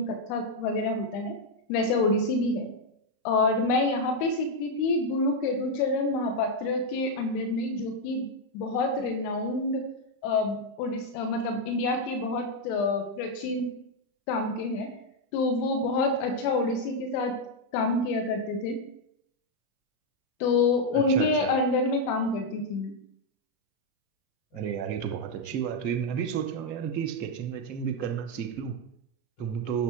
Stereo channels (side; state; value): right; late; 25 ms